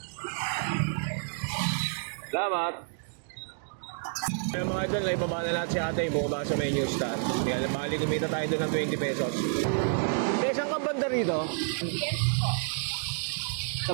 Salamat. Kaya mga idol, naibaba na lahat si ate, bumaba sa may New Star. Kaya bali kumita tayo doon ng 20 pesos. Saan ka banda rito? Yes po. Sa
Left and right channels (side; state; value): left; silent; digital silence